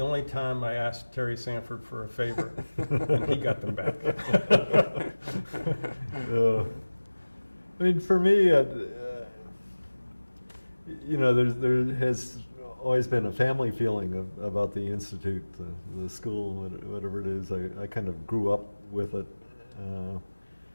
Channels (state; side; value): inverted; both; correlation -1.00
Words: time I asked Terry Sanford for a favor, and he got them back. For me, there has always been a family feeling about the Institute, the school, whatever it is. I kind of grew up with it.